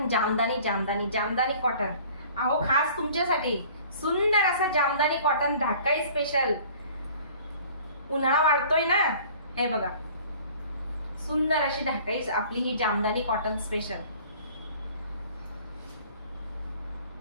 jamdani jamdani jamdani cotton. अहो खास तुमच्यासाठी सुंदर असं जामदानी कॉटन ढाकाई स्पेशल. उन्हाळा वाढतोय ना, हे बघा सुंदर अशी ढाकाई आपली ही जामदानी कॉटन स्पेशल.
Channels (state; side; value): inverted; both; correlation -0.50